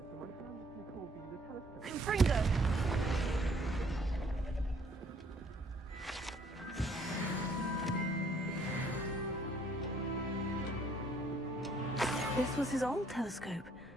when my friend Nicole being the telescope? Confringo! This was his old telescope.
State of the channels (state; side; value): normal; both; correlation 0.63